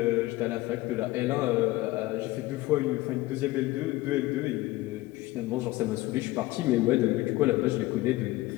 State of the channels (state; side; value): quieter; right; 18.8 dB